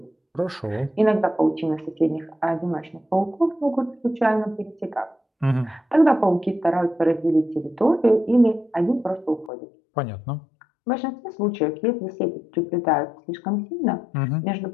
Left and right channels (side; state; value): right; drops out; at 9.5 s